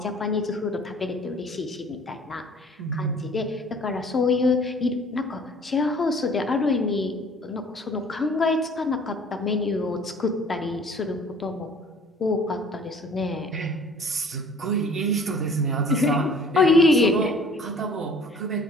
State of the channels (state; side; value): normal; both; correlation 0.52